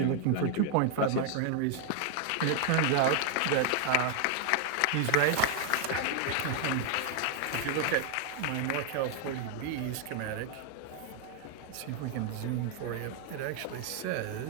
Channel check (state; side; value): different; both; correlation 0.00